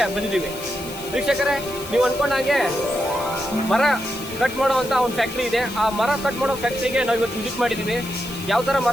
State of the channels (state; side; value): noise; left; hiss, 14 dB below the sound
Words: ಬಂದಿದ್ದೀವಿ. ವೀಕ್ಷಕರೇ, ನೀವು ಅಂದ್ಕೊಂಡಾಗೆ ಮರ ಕಟ್ ಮಾಡುವಂಥ ಒಂದು ಫ್ಯಾಕ್ಟ್ರಿ ಇದೆ. ಆ ಮರ ಕಟ್ ಮಾಡೋ ಫ್ಯಾಕ್ಟ್ರಿಗೆ ನಾವು ಇವತ್ತು ವಿಸಿಟ್ ಮಾಡಿದ್ದೀವಿ. ಯಾವ ಥರ